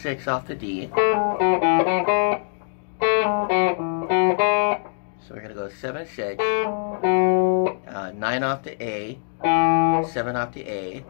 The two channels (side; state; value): right; silent; digital silence